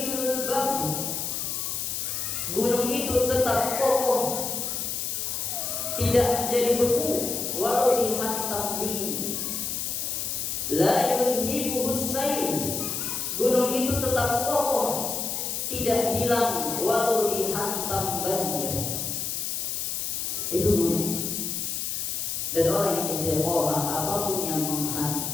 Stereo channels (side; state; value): left; noise; hiss, 2 dB below the sound